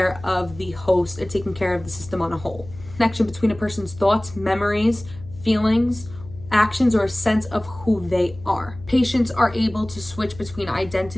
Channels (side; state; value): left; noise; hum, 17 dB below the sound